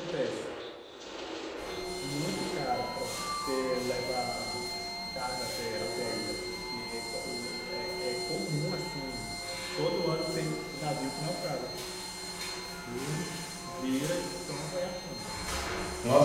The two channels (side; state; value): both; identical; correlation 1.00